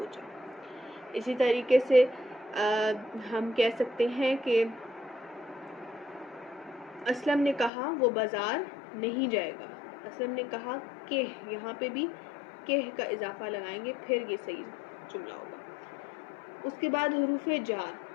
جاؤ. اسی طریقے سے ہم کہہ سکتے ہیں کہ اسلم نے کہا وہ بازار نہیں جائے گا. اسلم نے کہا کہ, یہاں پہ بھی کہ کا اضافہ لگائیں گے پھر یہ صحیح جملہ ہوگا. اس کے بعد حروف جار.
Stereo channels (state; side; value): drops out; right; at 7.7 s